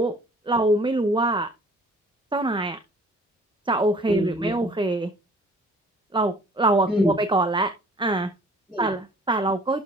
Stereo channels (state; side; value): normal; both; correlation 0.53